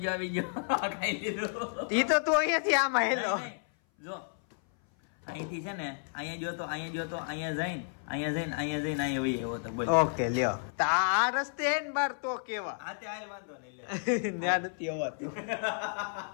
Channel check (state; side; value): silent; right; 56 dB below the other